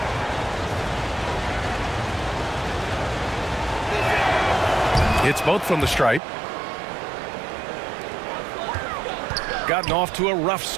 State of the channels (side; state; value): left; drops out; at 6.2 s